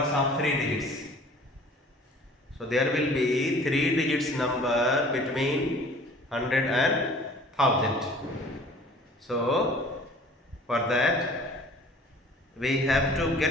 of 3 digits. So there will be 3 digits number between 100 and 1000. So for that we have to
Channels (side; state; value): both; normal; correlation 0.49